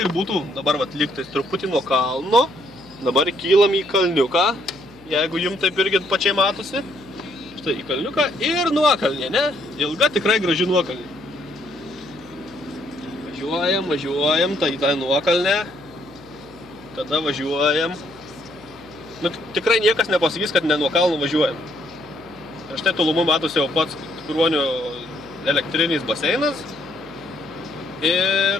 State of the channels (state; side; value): noise; left; hum, 25 dB below the sound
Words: būtų, dabar vat lygtais truputį nuo kalno. Dabar kylam į kalniuką, jeigu jums taip irgi pačiai matosi. Štai į kalniuką ir nuokalnė, ne? Ilga, tikrai graži nuokalnė. Važiuojam, tai į tą nuokalnę. Tada važiuojam. Nu, tikrai niekas nepasakys, kad ne nuo kalno važiuojam. Ir štai tolumu matosi jau pats Kruonių elektrinis baseinas.